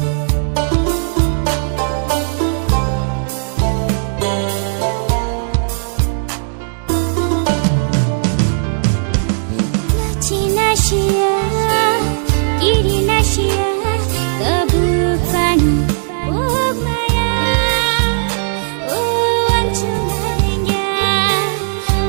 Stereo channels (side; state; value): left; silent; digital silence